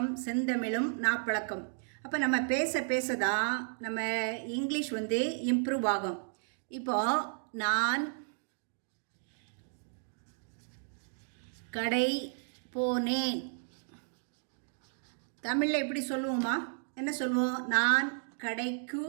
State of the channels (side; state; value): left; silent; digital silence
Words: செந்தமிழும் நாப்பழக்கம். அப்போ நம்ம பேச தான் நம்ம இங்கிலீஷ் இம்ப்ரூவ் ஆகும். இப்போது நான் கடை போனேன். தமிழில் எப்படி சொல்லுவோமா? என்ன சொல்லுவோம்? நான் கடைக்கு